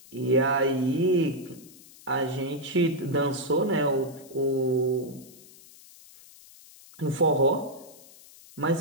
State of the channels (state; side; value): noise; left; hiss, 22 dB below the sound